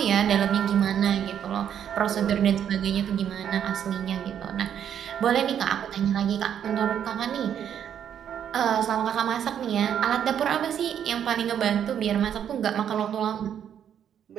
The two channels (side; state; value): left; quieter; 9.1 dB